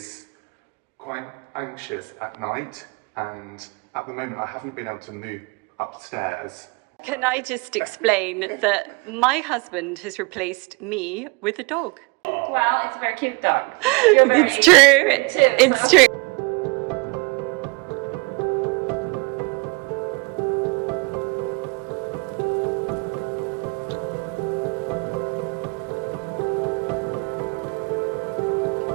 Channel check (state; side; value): quieter; left; 29.4 dB